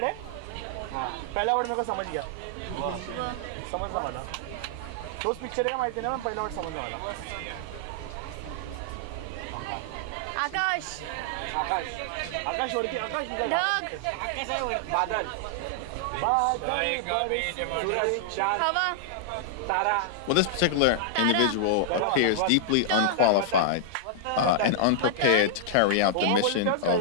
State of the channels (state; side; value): different; both; correlation -0.01